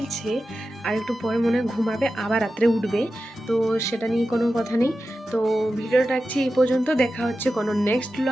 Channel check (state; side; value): normal; both; correlation 0.92